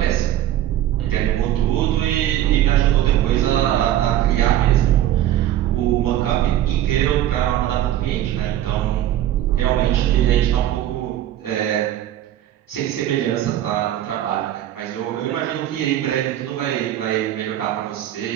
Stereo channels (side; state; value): left; quieter; 12.5 dB